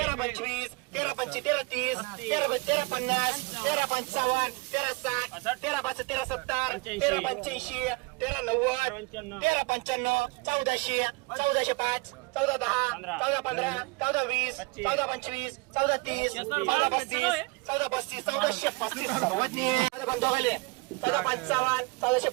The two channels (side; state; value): left; quieter; 27.6 dB